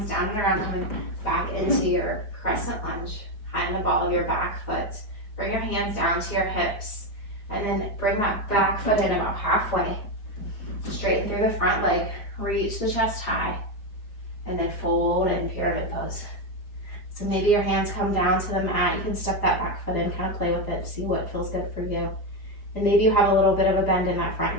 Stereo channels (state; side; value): late; right; 4.9 ms